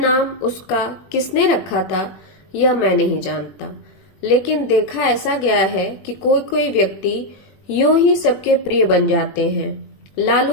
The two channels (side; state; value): right; late; 21 ms